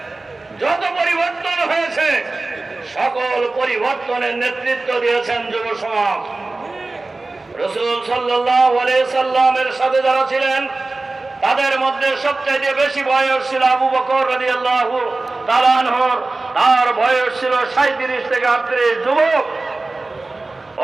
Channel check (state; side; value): quieter; left; 3.3 dB